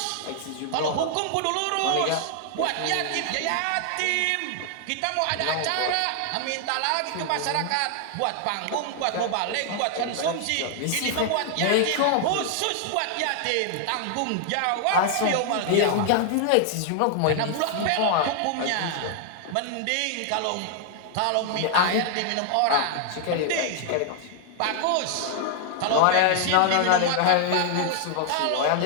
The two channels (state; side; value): different; both; correlation 0.00